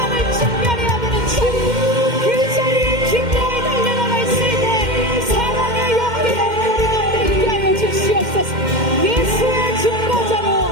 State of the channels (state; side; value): late; left; 2.1 ms